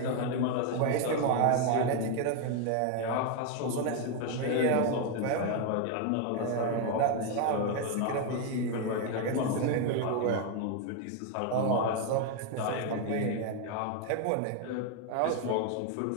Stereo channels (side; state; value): both; different; correlation 0.01